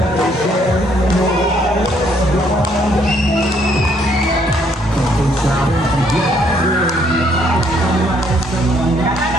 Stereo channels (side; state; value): both; normal; correlation 0.68